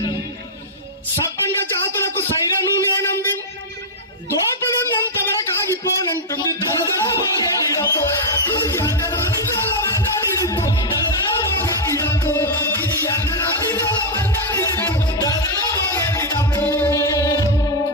సబ్బండ జాతులకు సైరను నేనంది, దోపిడున్నంత వరకు ఆగిపోనంటుంది.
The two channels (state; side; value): normal; both; correlation -0.03